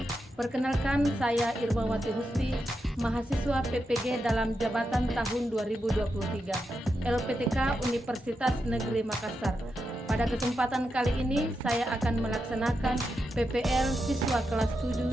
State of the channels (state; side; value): normal; both; correlation 0.86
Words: Perkenalkan, saya Irmawati Husni, mahasiswa PPG dalam jabatan tahun 2023, LPTK Universitas Negeri Makassar. Pada kesempatan kali ini, saya akan melaksanakan PPL siswa kelas